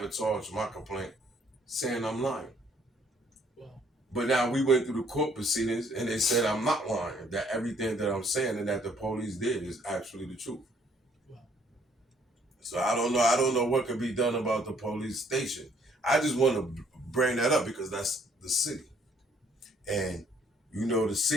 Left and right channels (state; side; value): normal; both; correlation 0.64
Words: my complaint saying I'm lying. Wow. But now we went through the court proceedings and they said I'm not lying, that everything that I'm saying and that the police did is actually the truth. Wow. So I don't know what could be done about the police station. I just want to bring that up because that's the city. And the